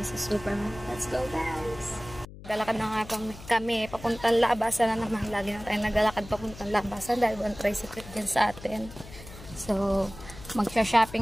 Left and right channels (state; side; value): noise; left; hum, 16 dB below the sound